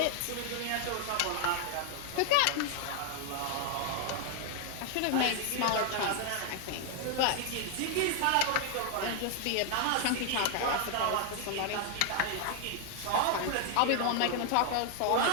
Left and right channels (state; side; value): different; both; correlation 0.00